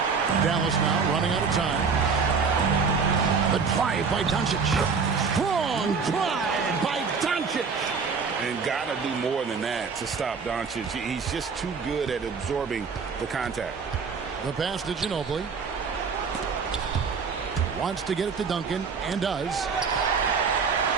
Dallas now running out of time. The drive by Doncic. Strong drive by Doncic. And got to do more than that to stop Doncic. He's just too good at absorbing the contact. The pass to Ginobili. Wants to get it to Duncan, and does.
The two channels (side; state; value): left; quieter; 5.4 dB